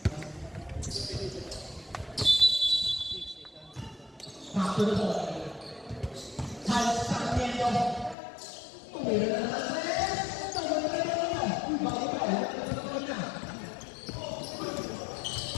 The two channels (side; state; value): right; drops out; at 8.2 s